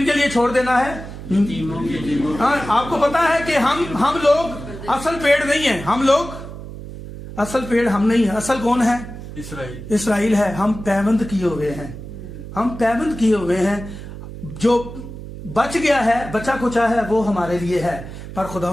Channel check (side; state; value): right; noise; hum, 12 dB below the sound